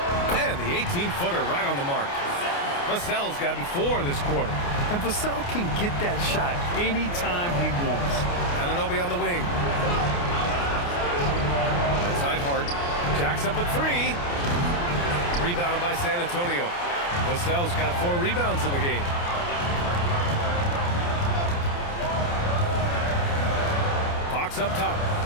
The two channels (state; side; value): late; right; 29 ms